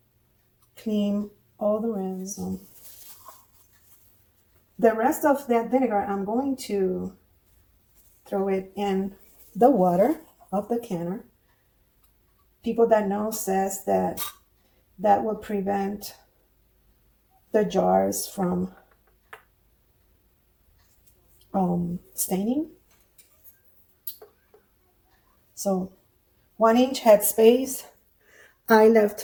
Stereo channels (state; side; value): identical; both; correlation 1.00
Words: clean all the rims. The rest of that vinegar, I'm going to throw it in the water of the canner. People that know says that will prevent the jars from staining. So 1 inch headspace. I